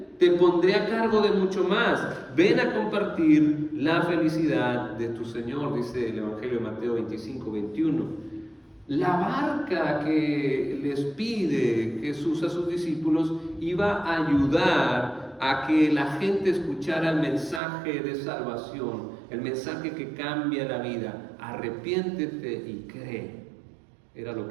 te pondré a cargo de mucho más, ven a compartir la felicidad de tu Señor, dice el Evangelio de Mateo 25-21. La barca que les pide Jesús a sus discípulos iba a ayudar a que la gente escuchara el mensaje de salvación, el mensaje que cambia la vida. Arrepiéntete y cree. Era lo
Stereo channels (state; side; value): drops out; left; at 17.6 s